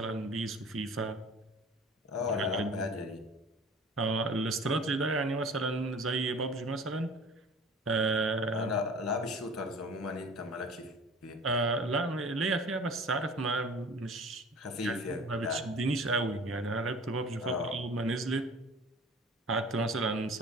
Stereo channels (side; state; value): both; normal; correlation 0.44